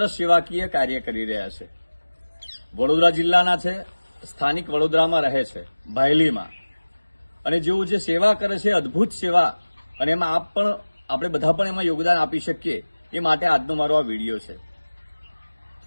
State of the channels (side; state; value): both; inverted; correlation -1.00